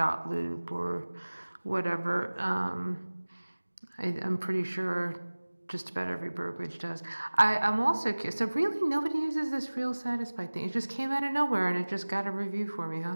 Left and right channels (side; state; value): both; inverted; correlation -1.00